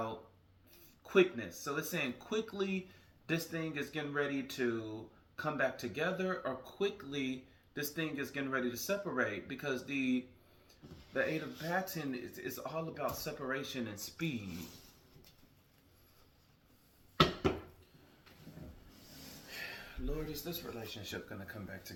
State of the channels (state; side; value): identical; both; correlation 1.00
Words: quickness. So it's saying quickly this thing is getting ready to come back together, or quickly this thing is getting ready to separate, because the Eight of Baton is all about separation and speed. Lord, is this relationship going to come back